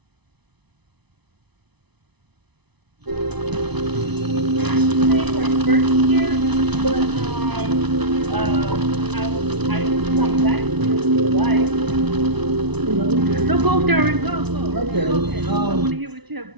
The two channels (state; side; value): late; left; 0.99 ms